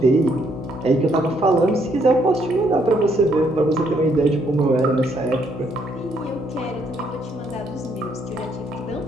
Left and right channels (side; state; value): both; normal; correlation 0.71